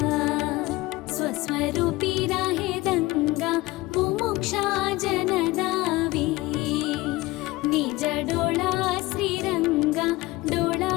स्वरूपी राहे दंगा मुमुक्षा जनदावी निज डोळा श्रीरंगा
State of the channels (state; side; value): quieter; right; 20.3 dB